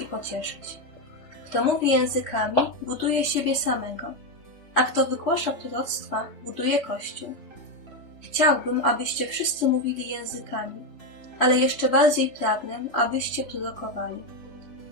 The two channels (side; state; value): right; late; 3.4 ms